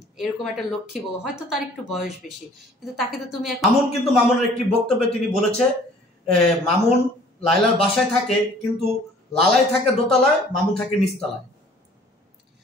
এরকম একটা লক্ষ্মী বউ হয়তো তার একটু বয়স বেশি কিন্তু তাকে তো তুমি মামুন কিন্তু মামুনের একটি বক্তব্যে তিনি বলেছে মামুন লায়লার বাসায় থাকে কিন্তু লালাই থাকে দোতলায় মামুন থাকে নিচতলায়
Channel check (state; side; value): normal; both; correlation 0.53